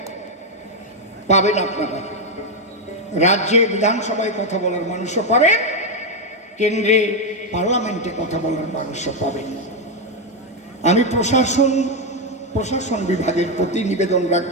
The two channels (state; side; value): normal; both; correlation 0.04